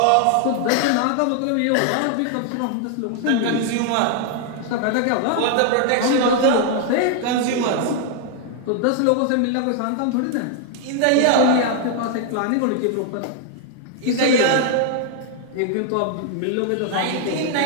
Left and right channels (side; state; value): both; different; correlation 0.00